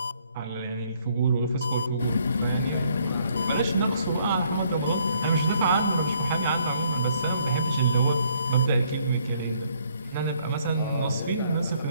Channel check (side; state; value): both; inverted; correlation -0.66